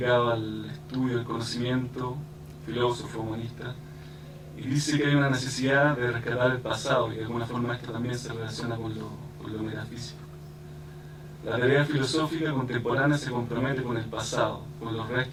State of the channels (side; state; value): both; identical; correlation 1.00